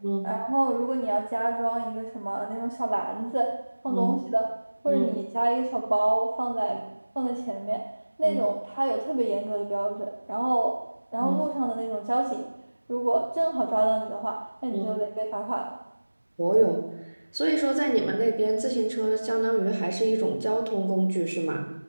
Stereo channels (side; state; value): both; inverted; correlation -1.00